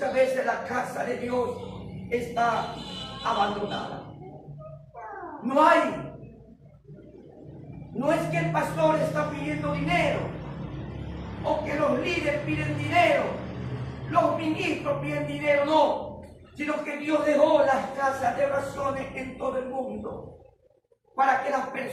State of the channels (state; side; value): identical; both; correlation 1.00